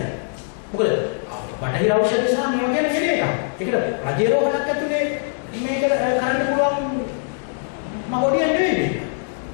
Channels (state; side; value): silent; right; 62 dB below the other